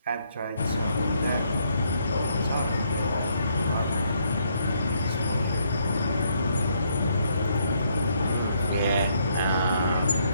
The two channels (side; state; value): both; inverted; correlation -0.72